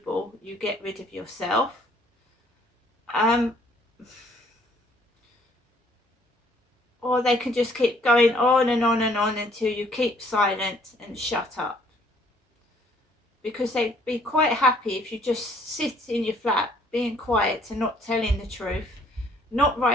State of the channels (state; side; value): normal; both; correlation 0.62